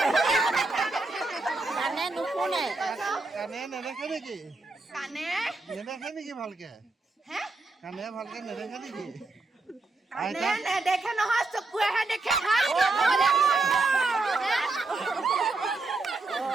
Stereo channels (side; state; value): left; quieter; 3.4 dB